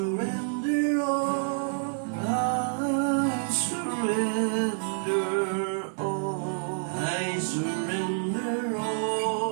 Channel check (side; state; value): left; silent; digital silence